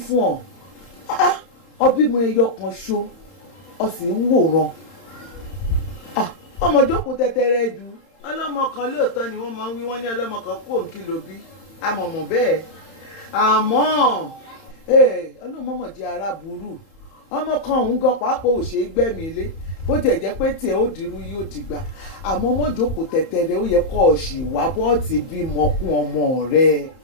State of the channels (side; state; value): right; late; 31 ms